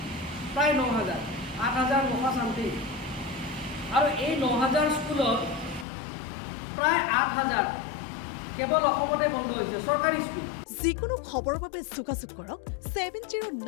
প্ৰায় 9,000, 8,900 চামথিং। আৰু এই 9,000 স্কুলত প্ৰায় 8,000 কেৱল অসমতে বন্ধ হৈছে চৰকাৰী স্কুল। যিকোনো খবৰৰ বাবে যোগাযোগ কৰক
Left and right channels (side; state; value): right; drops out; at 5.9 s